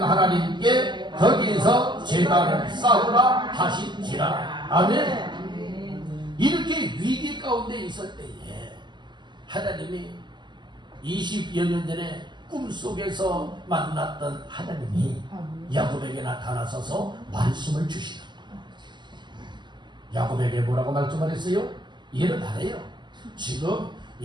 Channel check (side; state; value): left; late; 0.22 ms